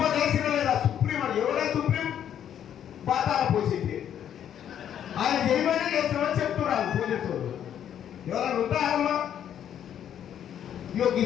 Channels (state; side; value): quieter; right; 9.8 dB